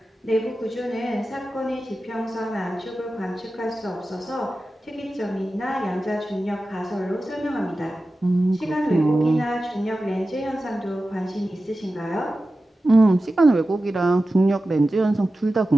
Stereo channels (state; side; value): normal; both; correlation 0.94